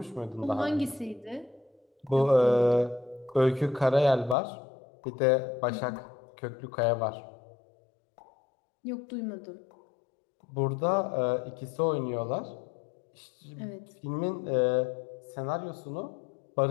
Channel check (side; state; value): right; drops out; at 4.4 s